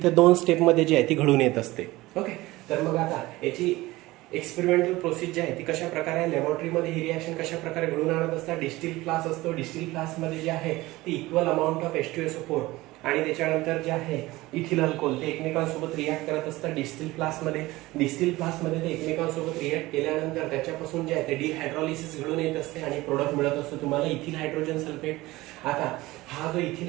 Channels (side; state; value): left; quieter; 19.2 dB